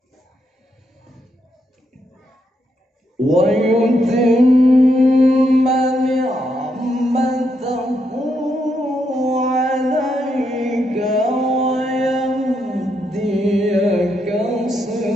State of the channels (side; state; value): both; normal; correlation 0.79